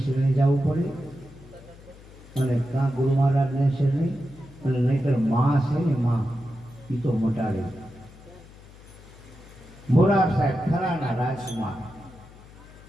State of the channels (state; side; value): noise; left; hum, 21 dB below the sound